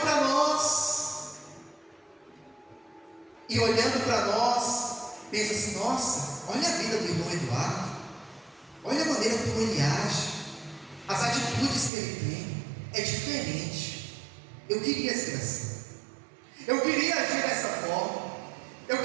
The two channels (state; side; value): drops out; left; at 11.9 s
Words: para nós e olhando para nós pensam assim: nossa, olha a vida do irmão Eduardo, olha a maneira como ele age, as atitudes que ele tem, é diferente. Eu queria ser assim, eu queria agir dessa forma, eu